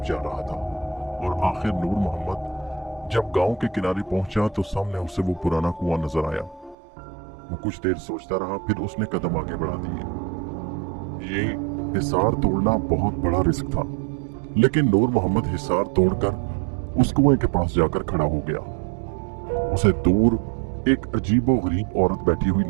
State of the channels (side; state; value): left; drops out; at 6.8 s